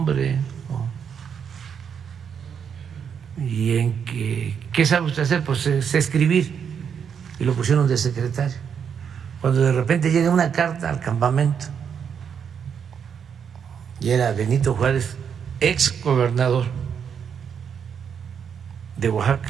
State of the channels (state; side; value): quieter; left; 7.4 dB